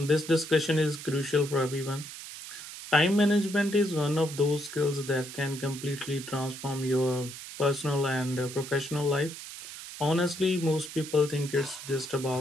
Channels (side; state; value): right; noise; hiss, 12 dB below the sound